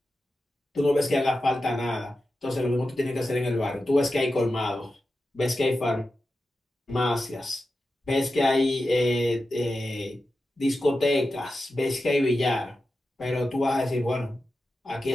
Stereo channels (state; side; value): normal; both; correlation 0.91